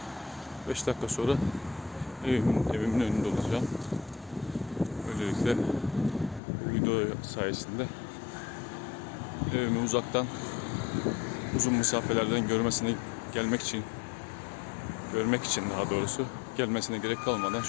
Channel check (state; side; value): drops out; right; at 6.4 s